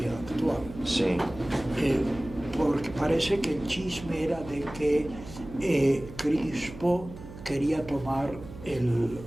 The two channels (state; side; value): noise; right; hum, 15 dB below the sound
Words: actual. sí. Porque parece que el chisme era de que Crispo quería tomar el